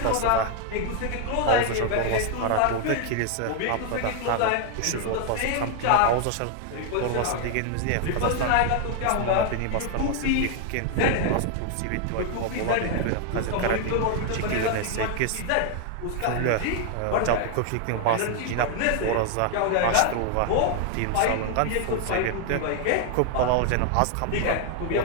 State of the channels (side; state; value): both; different; correlation 0.00